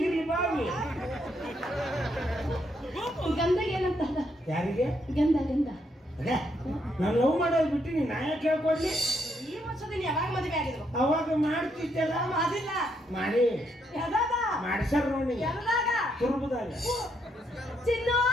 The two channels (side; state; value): both; normal; correlation 0.76